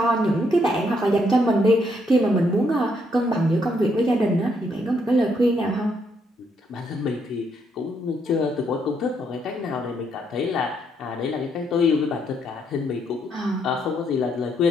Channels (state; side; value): normal; both; correlation 0.74